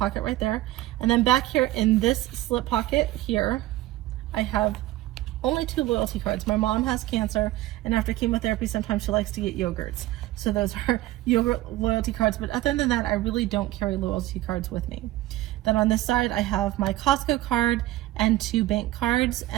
right there. And then back here in this slip pocket here, I have only 2 loyalty cards. My mom has cancer, and after chemotherapy, sometimes she likes to get yogurts. So those are yogurt loyalty cards, but other than that, I really don't carry loyalty cards with me. Then on this side, I have my Costco card and 2 bank cards,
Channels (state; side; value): quieter; left; 16.2 dB